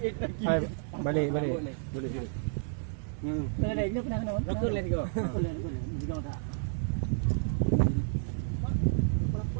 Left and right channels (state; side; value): silent; left; 57 dB below the other